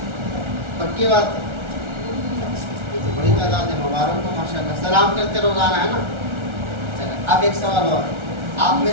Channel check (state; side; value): late; left; 1.4 ms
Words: پکی بات، بڑی تعداد ہے، مبارک کو ماشاءاللہ، سلام کرتے روزانہ، ہے نا؟ چلے اب ایک سوال اور، آپ